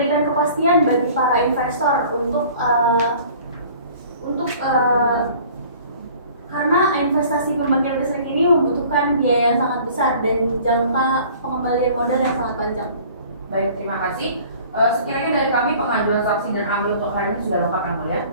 kepastian bagi para investor karena investasi pembangkit listrik ini membutuhkan biaya yang sangat besar dan jangka pengembalian modal yang sangat panjang. Baik, terima kasih. Sekiranya dari kami pengajuan saksi dan ahli untuk hari ini sudah lengkap yang mulia.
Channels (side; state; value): both; inverted; correlation -0.50